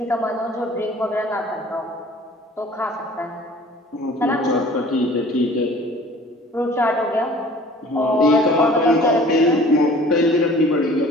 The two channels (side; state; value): both; normal; correlation 0.48